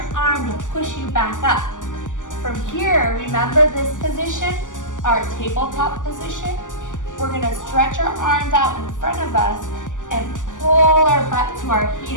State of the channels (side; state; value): right; late; 0.87 ms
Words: arm to push you back up. From here, remember this position, our tabletop position. We're gonna stretch our arms out in front of us and pull our butt to our